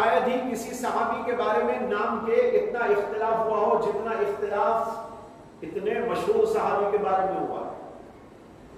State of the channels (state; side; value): identical; both; correlation 1.00